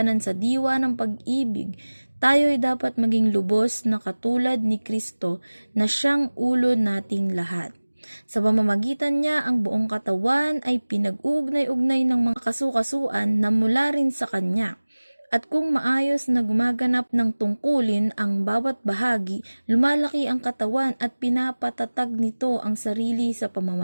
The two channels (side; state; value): both; inverted; correlation -1.00